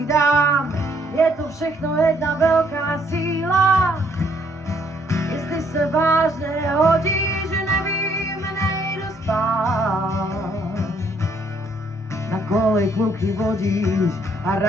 je to všechno jedna velká síla. Jestli se vážně hodí, že nevím, nejdu spát. Na kolej kluky vodíš a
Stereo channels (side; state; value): both; normal; correlation 0.68